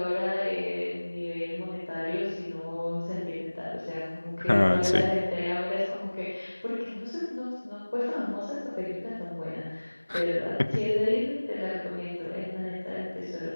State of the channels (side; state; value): both; inverted; correlation -1.00